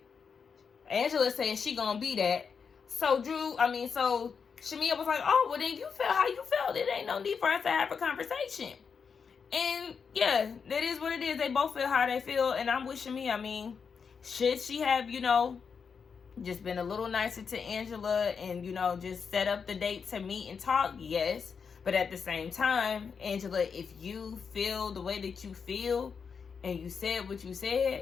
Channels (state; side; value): quieter; right; 6.0 dB